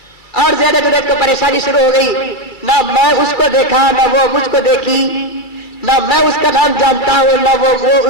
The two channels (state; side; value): late; right; 2.3 ms